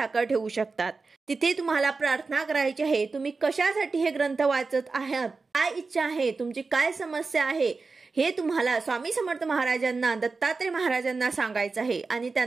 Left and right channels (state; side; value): quieter; left; 4.2 dB